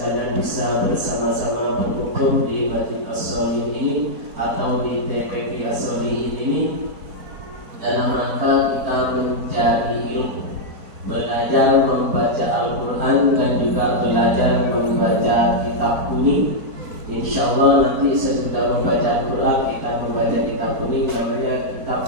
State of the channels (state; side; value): late; left; 4.4 ms